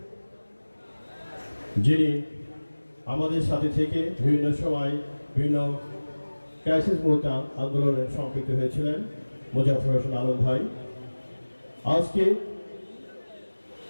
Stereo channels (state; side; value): inverted; both; correlation -1.00